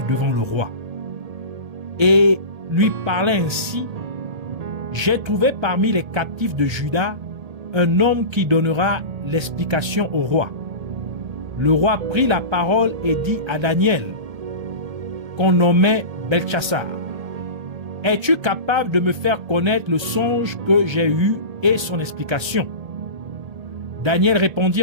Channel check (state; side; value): late; left; 1.3 ms